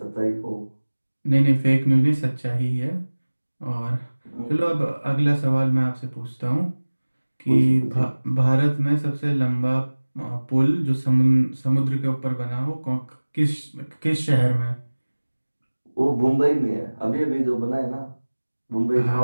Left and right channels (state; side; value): inverted; both; correlation -1.00